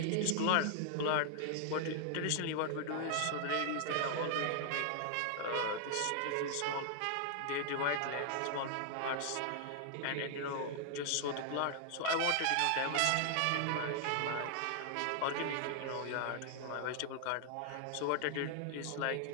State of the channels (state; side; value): different; both; correlation 0.00